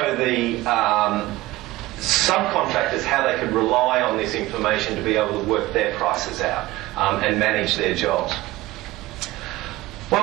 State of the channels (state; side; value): quieter; left; 18.1 dB